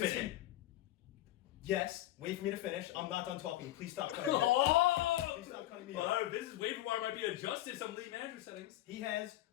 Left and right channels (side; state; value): right; quieter; 14.8 dB